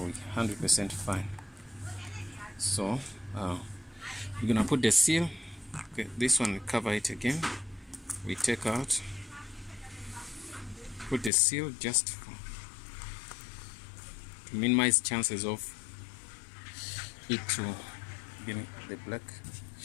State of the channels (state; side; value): drops out; right; at 11.3 s